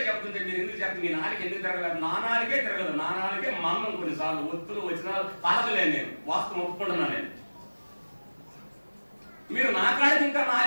చెప్తుంటే మీరు ఎందుకు చెప్పండి? మీ నాలుగు ఎందుకు తిరగలేదు? నా నాలుగే తిరగదు. నా నాలుగే మన్నం కొన్నిసార్లు ఒత్తులు వచ్చినా తలగలేను. నేను వాస్తవం ఒప్పుకుంటున్నా. నేను మీరు నా కాడికి ఇంకా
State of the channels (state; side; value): inverted; both; correlation -1.00